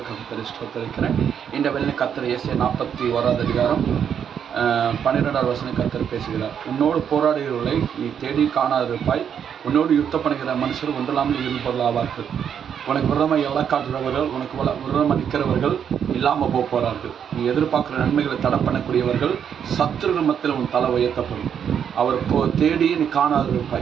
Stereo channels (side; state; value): left; quieter; 8.2 dB